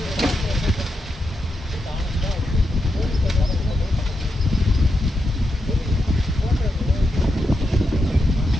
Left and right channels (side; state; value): both; normal; correlation 0.85